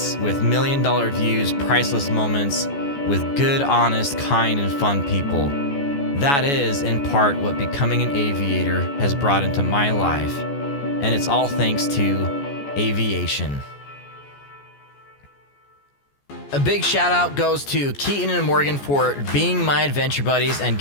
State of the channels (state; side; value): late; right; 14 ms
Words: with million-dollar views, priceless moments, with good, honest, kind, and fun people. That is, in part, what becoming an aviator has brought into my life, and it's all thanks to aviation. A big shout out goes to Keaton and Morgan for being my adventure buddies and